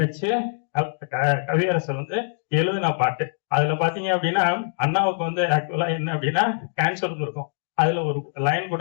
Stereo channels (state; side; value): silent; right; digital silence